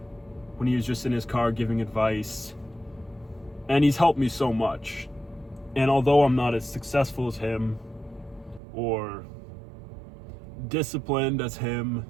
when he was just in his car giving advice, and he's helped me so much. And although I'm not as successful as him or disciplined as him,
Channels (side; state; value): left; drops out; at 8.6 s